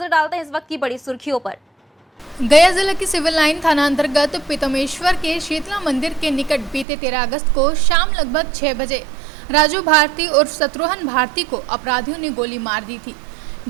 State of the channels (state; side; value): drops out; left; at 6.9 s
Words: डालते हैं इस वक्त की बड़ी सुर्खियों पर। गया जिले की सिविल लाइन थाना अंतर्गत पीतमेश्वर के शीतला मंदिर के निकट बीते 13 अगस्त को शाम लगभग 6 बजे राजू भारती उर्फ शत्रुघ्न भारती को अपराधियों ने गोली मार दी थी,